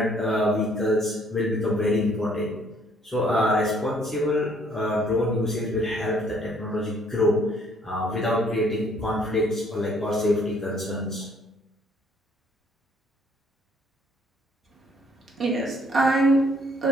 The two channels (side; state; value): both; normal; correlation 0.63